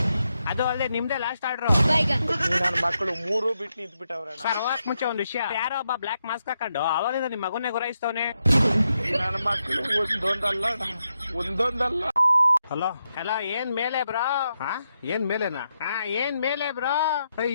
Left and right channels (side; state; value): both; inverted; correlation -0.83